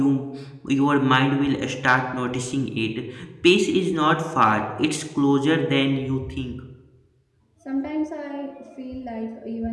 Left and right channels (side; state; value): both; identical; correlation 1.00